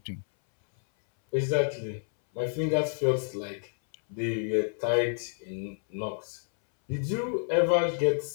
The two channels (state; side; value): silent; right; 59 dB below the other